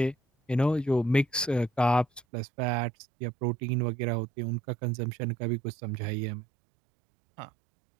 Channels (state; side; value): drops out; left; at 2.2 s